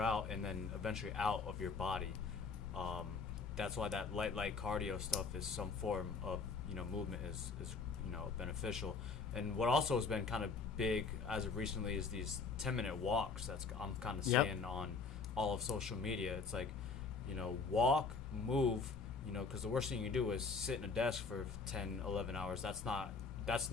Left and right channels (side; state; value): right; quieter; 4.7 dB